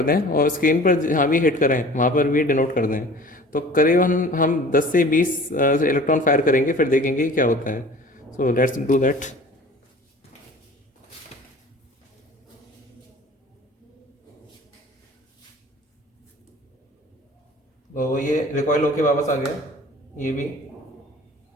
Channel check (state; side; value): normal; both; correlation 0.45